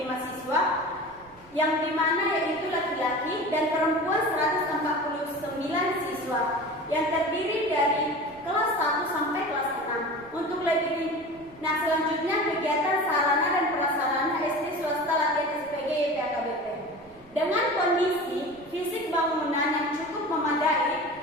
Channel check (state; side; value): noise; right; rumble, 28 dB below the sound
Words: siswa, yang dimana yaitu laki-laki dan perempuan 149 siswa, yang terdiri dari kelas 1 sampai kelas 6. Untuk lebih, nah selanjutnya kegiatan sarana dan prasarana SD swasta latihan SPG YP HKBP. Dengan kondisi fisik bangunan yang cukup memadai,